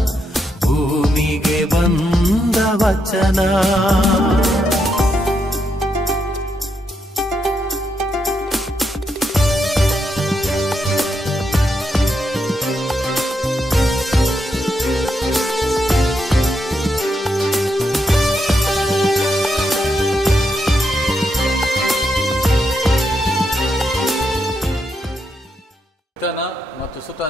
ಭೂಮಿಗೆ ಬಂದ ವಚನ. ಪಿತನ ಮತ್ತು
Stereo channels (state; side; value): normal; both; correlation 0.81